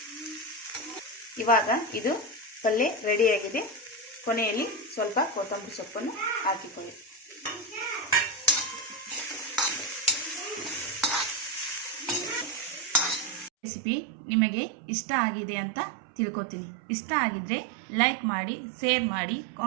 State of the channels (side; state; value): left; drops out; at 13.5 s